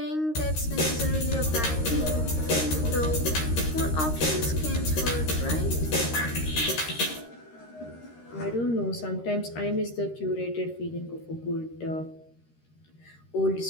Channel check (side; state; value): right; late; 13 ms